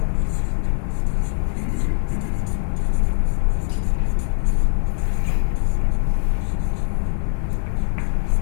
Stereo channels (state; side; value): silent; right; 62 dB below the other